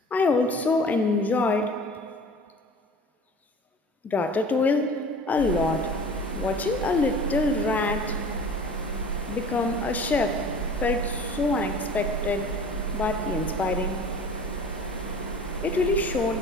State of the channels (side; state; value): both; normal; correlation 0.42